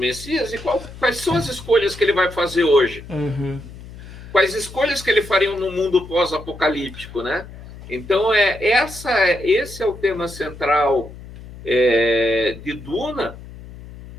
e quais são as escolhas que ele vai fazer hoje? Quais escolhas que ele faria no mundo pós-apocalíptico, né? Então, esse é o tema central de Duna,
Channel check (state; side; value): noise; left; hum, 16 dB below the sound